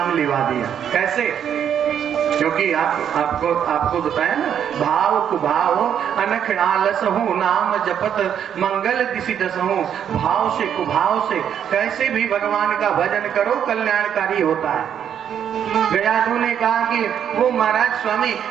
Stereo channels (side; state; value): left; quieter; 8.9 dB